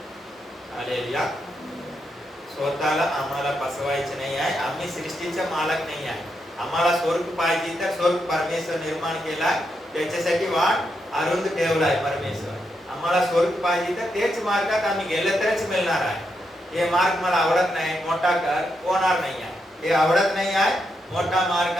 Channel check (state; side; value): normal; both; correlation 0.83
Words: हालेलुया. स्वतःला आम्हाला फसवायचे नाही आहे. आम्ही सृष्टीचा मालक नाही आहे. आम्हाला स्वर्ग पाहिजे तर स्वर्ग परमेश्वर निर्माण केलाय, त्याच्यासाठी वाट अरुंद ठेवलाय परमेश्वर. आम्हाला स्वर्ग पाहिजे तर तेच मार्गात आम्ही गेले तरच मिळणार आहे. हे मार्ग मला आवडत नाही, मोठा कर, होणार नाही आहे. हे आवडत नाही आहे, मोठा मार्ग